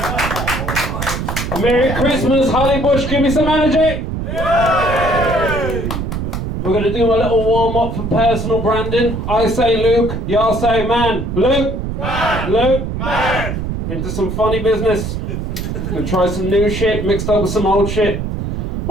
Merry Christmas, Holly Bush, give me some energy. We're going to do a little warm-up for personal branding. I say Luke, y'all say man. Luke, man. Luke, man. Into some funny business. Gonna try some new shit mixed up with some old shit.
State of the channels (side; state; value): right; noise; rumble, 4 dB below the sound